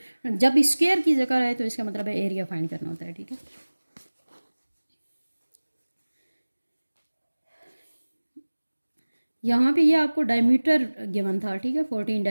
जब स्क्वायर की जगह है तो इसका मतलब है एरिया फाइंड करना होता है, ठीक है। यहाँ पे ये आपको डायमीटर गिवन था, ठीक है, 14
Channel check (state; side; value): inverted; both; correlation -1.00